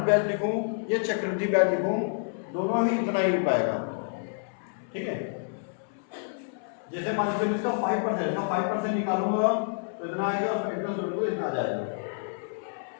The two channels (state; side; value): silent; right; 59 dB below the other